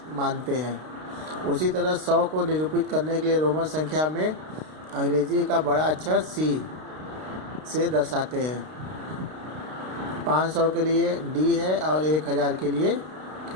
मानते हैं। उसी तरह 100 को निरूपित करने के लिए रोमन संख्या में अंग्रेजी का बड़ा अक्षर C से दर्शाते हैं। 500 के लिए D है और 1000 के लिए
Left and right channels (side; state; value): left; late; 32 ms